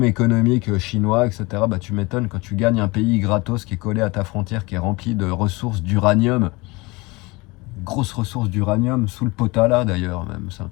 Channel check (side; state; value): right; quieter; 24.3 dB